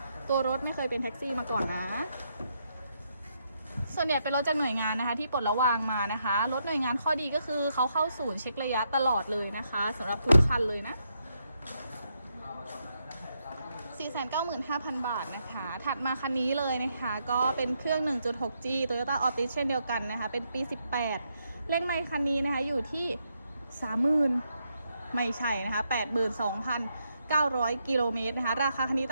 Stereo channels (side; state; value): both; inverted; correlation -0.79